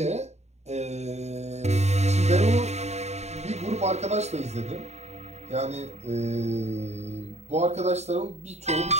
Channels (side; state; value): left; late; 0.32 ms